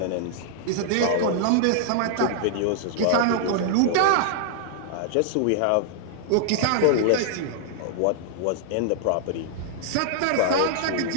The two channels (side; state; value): both; different; correlation -0.01